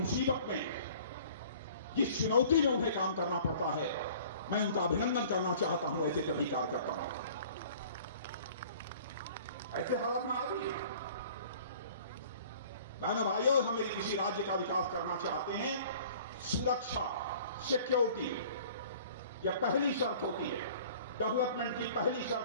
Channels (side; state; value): both; inverted; correlation -0.49